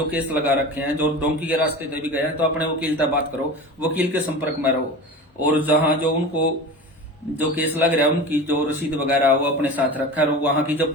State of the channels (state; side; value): normal; both; correlation 0.32